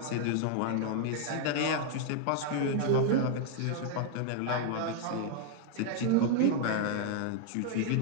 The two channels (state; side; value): different; both; correlation 0.00